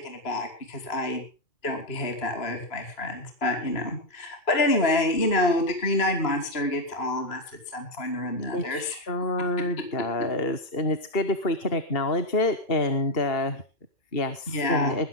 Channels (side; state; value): right; late; 2.9 ms